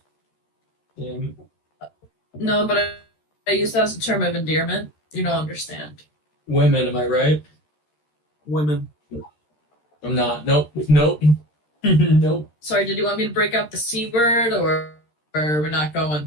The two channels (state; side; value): late; right; 13 ms